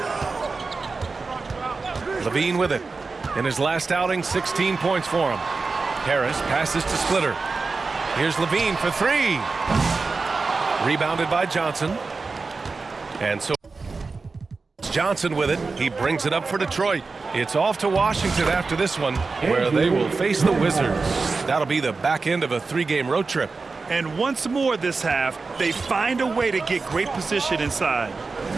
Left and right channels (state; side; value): quieter; left; 4.2 dB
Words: Levine with it. In his last outing, 16 points for him. Harris passes to Splitter. Here's Levine for 3. Rebounded by Johnson. And so Johnson with it. He brings it up for Detroit. It's off to Washington after this one, where they will face the Wizards. That'll be the back end of a 3-game road trip. And once more this half, they find a way to get great position inside.